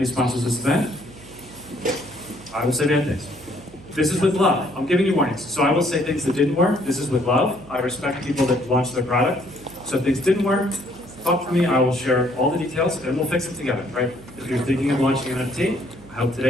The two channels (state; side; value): noise; right; hum, 21 dB below the sound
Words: sponsors of this event. I will say bad things. This is with love. I'm giving you warnings. So I will say things that didn't work. This is with love. I respect people that launch their product. So if things didn't work, talk to me. I will share all the details and we'll fix it together, right? If you're thinking of launching an NFT, I hope